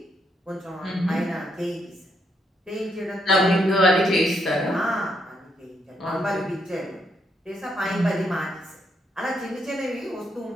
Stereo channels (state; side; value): normal; both; correlation 0.76